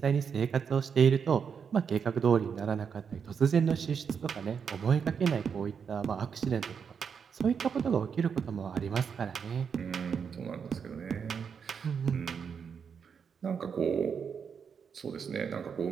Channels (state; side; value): quieter; left; 6.7 dB